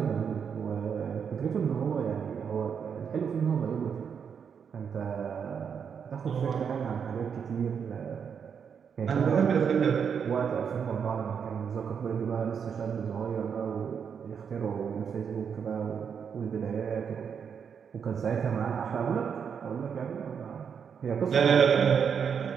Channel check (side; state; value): left; quieter; 7.0 dB